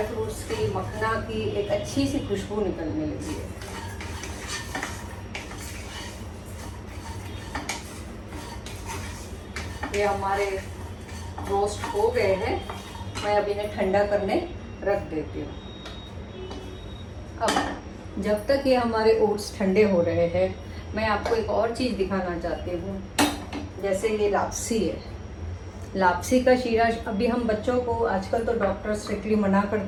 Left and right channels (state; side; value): identical; both; correlation 1.00